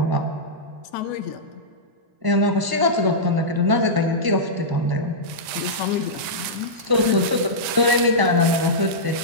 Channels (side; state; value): left; late; 1.9 ms